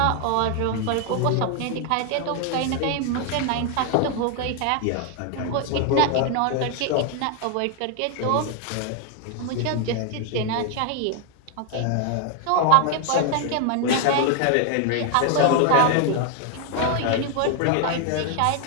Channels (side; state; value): both; different; correlation 0.00